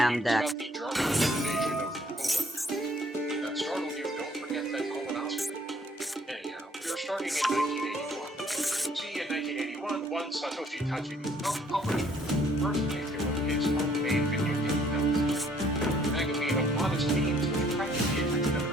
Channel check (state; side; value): normal; both; correlation 0.62